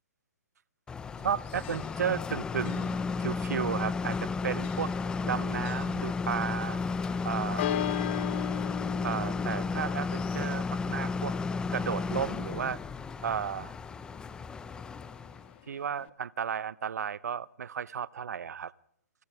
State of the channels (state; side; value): normal; both; correlation 0.36